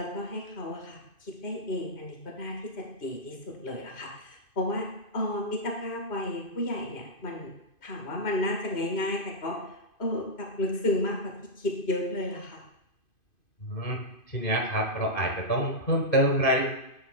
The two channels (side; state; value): right; late; 2.5 ms